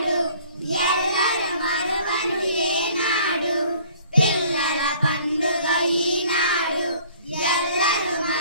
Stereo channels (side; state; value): both; inverted; correlation -0.54